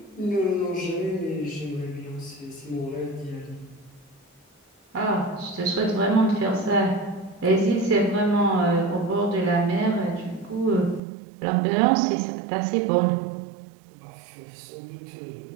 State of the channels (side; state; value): left; drops out; at 11.0 s